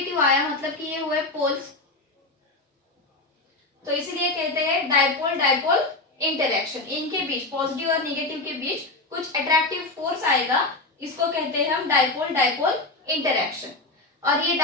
आया, मतलब कि ये हुए पोल्स। तो इसीलिए कहते हैं डायपोल इंटरैक्शन। इनके बीच, पॉजिटिव और निगेटिव के बीच कुछ अट्रैक्टिव फोर्स आएगा, इसको कहते हैं हम डायपोल इंटरैक्शन। और ये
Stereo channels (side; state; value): right; quieter; 3.0 dB